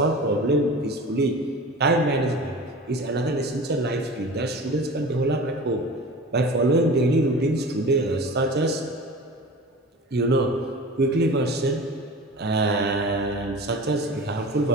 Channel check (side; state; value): both; normal; correlation 0.36